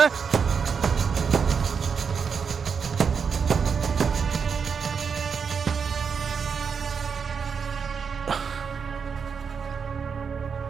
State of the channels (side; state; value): left; quieter; 6.2 dB